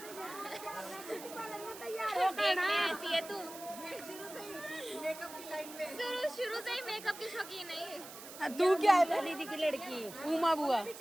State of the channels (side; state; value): right; noise; hiss, 14 dB below the sound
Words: दो ब्यूटी पार्लर में तैयार हो करना ऐसी है तू शुरू से ही मेकअप की शौकीन है। तू क्या है? दीदी की लड़की उमा बुआ।